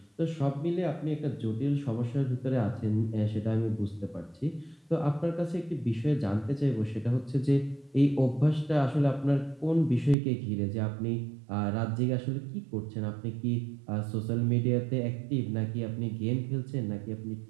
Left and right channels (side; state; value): left; drops out; at 10.2 s